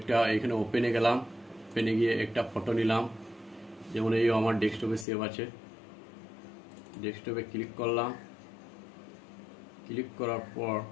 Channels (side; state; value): right; drops out; at 5.1 s